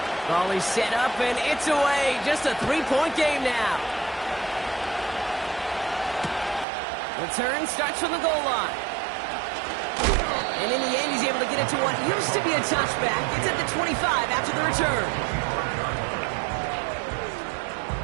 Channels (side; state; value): left; drops out; at 6.7 s